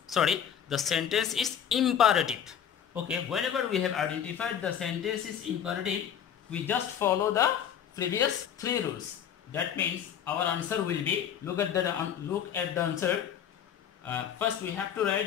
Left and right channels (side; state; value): right; quieter; 9.0 dB